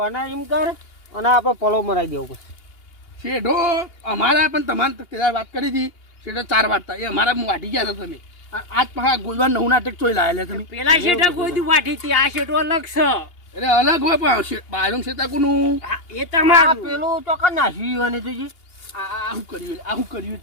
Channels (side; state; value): right; late; 2.8 ms